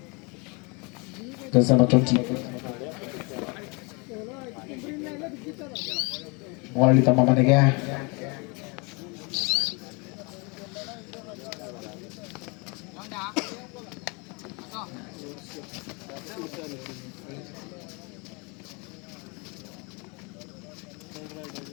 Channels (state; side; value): quieter; right; 30.4 dB